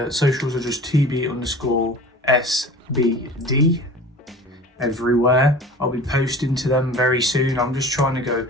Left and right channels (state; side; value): normal; both; correlation 0.40